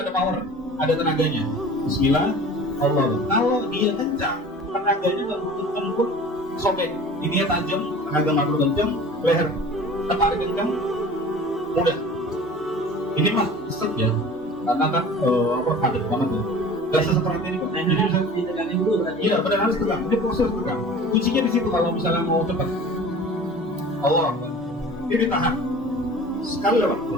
ada power, ada tenaganya. Bismillah Allah Akbar. Kalau dia kencang, tenaganya nggak kencang pun sobek, ini tajam, tenaga nggak perlu kencang, leher tertarik kencang, mudah. Ini mah set ya, karena kan padat banget ya. Gak seseperti ini kok. Jadi bisa diteganin dulu berarti. iya, benar harus tegang. Ini proses tegang. Kuncinya di situ kalau misalnya mau cepat. Allah Akbar. Ini ditahan. Sekali lewat.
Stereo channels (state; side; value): normal; both; correlation 0.42